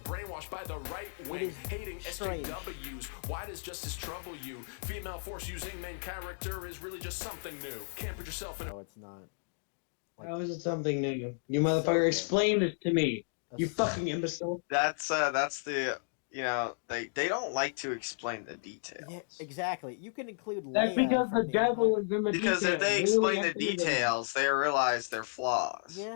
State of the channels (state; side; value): silent; right; digital silence